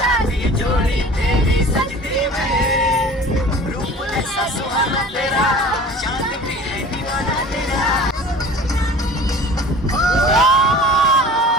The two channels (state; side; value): normal; both; correlation 0.42